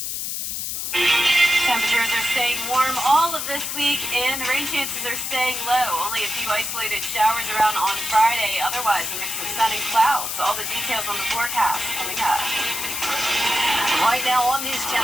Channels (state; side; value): noise; left; hiss, 3 dB below the sound